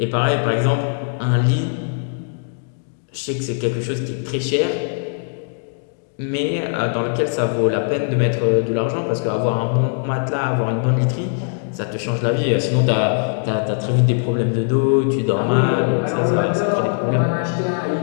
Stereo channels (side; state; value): right; silent; digital silence